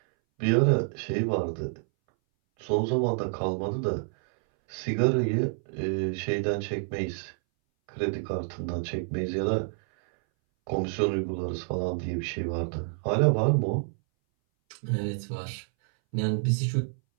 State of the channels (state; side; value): silent; left; 59 dB below the other